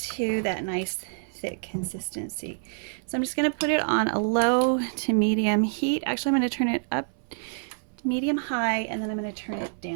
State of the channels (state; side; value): silent; left; 60 dB below the other